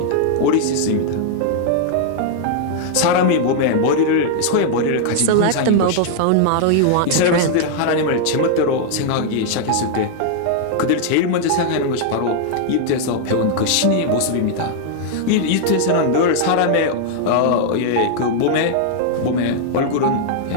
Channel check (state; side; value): different; both; correlation -0.01